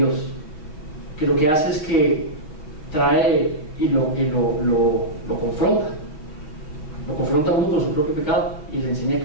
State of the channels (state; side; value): late; right; 6.3 ms